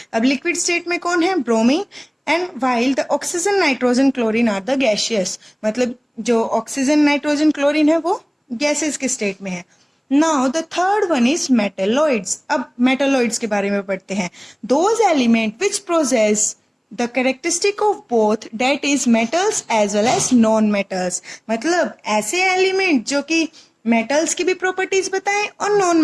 अब लिक्विड स्टेट में कौन है, bromine. And while the oxygen, nitrogen, chlorine are the gaseous. मतलब जो ऑक्सीजन, नाइट्रोजन, क्लोरीन है वो गैसेस के स्टेट में है. Now the third one is metalloids. अब मेटेलॉइड्स के बारे में पढ़ते हैं. Those element which process the characteristic of both, that is metals as well as non metals. मतलब ऐसे एलिमेंट जो कि मेटल्स की भी प्रॉपर्टीज बताएं और नॉन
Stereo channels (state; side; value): identical; both; correlation 1.00